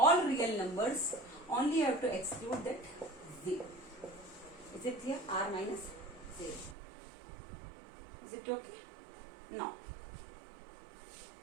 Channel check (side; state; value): left; drops out; at 6.8 s